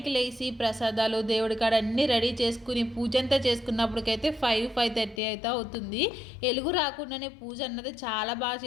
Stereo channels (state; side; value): drops out; right; at 5.2 s